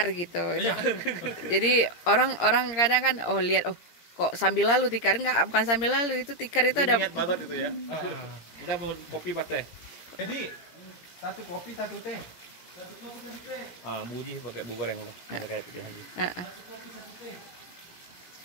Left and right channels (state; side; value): late; right; 17 ms